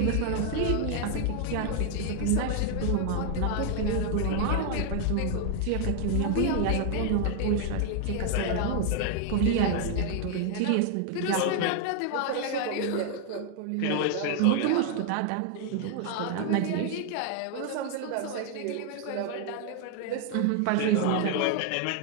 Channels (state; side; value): different; both; correlation 0.00